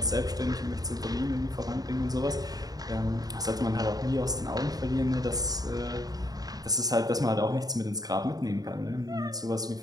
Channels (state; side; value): late; left; 0.18 ms